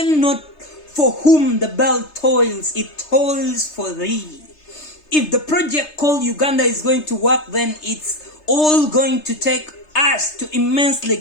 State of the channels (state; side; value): late; right; 3.3 ms